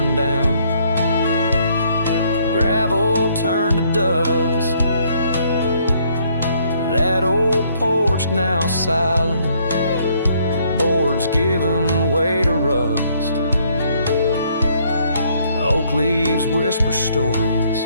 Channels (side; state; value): both; inverted; correlation -0.67